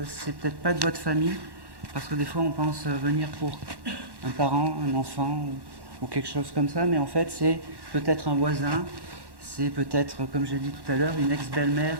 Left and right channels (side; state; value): left; late; 1.1 ms